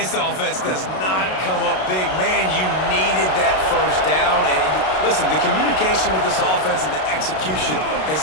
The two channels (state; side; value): late; right; 32 ms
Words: offense does not come up big. Man, you needed that 1st down. And listen, the communication with this offense and the execution has